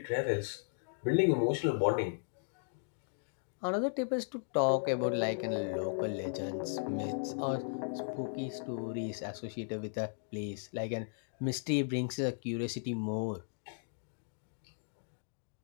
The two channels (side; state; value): right; silent; digital silence